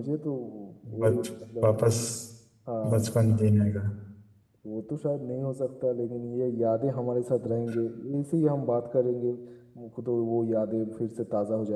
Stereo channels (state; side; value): identical; both; correlation 1.00